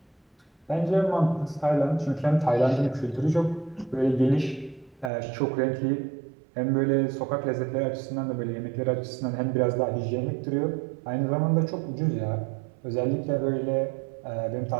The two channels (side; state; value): left; drops out; at 5.1 s